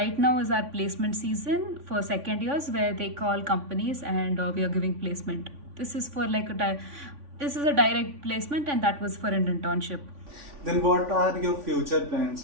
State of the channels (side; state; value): left; late; 3.5 ms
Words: now is our placement season for second years, where they call companies and we are giving placement. This is for this is a direct placement, and that was for an internship. then what are your future